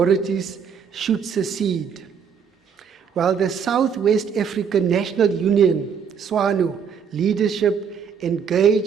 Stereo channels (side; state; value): left; quieter; 6.9 dB